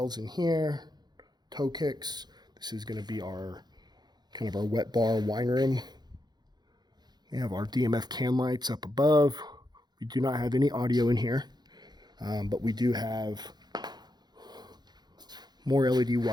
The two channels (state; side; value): late; left; 0.20 ms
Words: in here, toe kicks. This is going to be our kind of our wet bar wine room. We have our DMF can lights up above. We do not have any audio in here, but we do have more LED